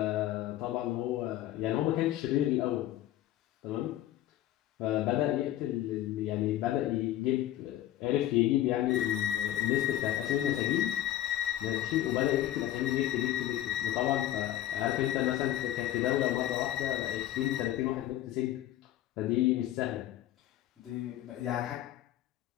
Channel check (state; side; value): quieter; right; 13.3 dB